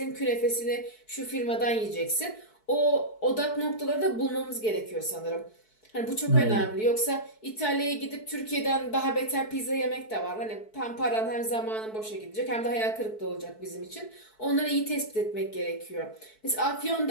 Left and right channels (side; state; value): right; late; 4.6 ms